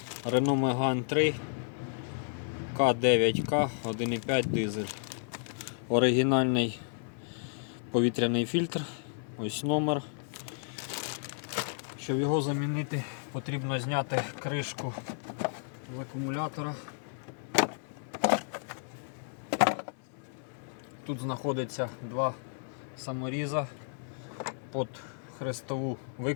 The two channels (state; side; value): silent; right; 56 dB below the other